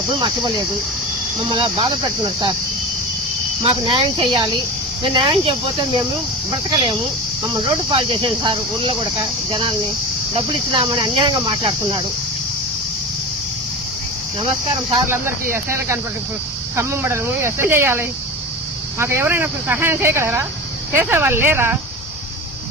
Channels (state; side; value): normal; both; correlation 0.28